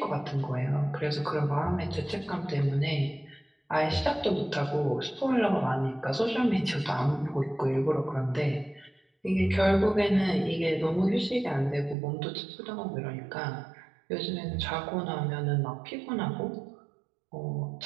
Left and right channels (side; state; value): left; drops out; at 12.0 s